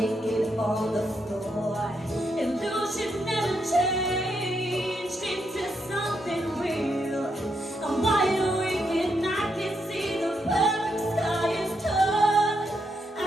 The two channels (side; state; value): both; normal; correlation 0.80